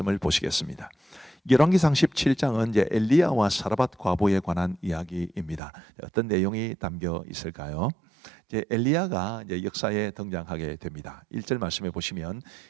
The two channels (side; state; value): left; drops out; at 5.6 s